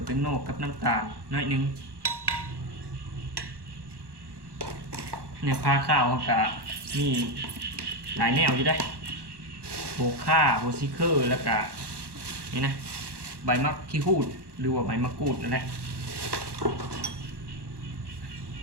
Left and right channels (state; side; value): late; left; 1.2 ms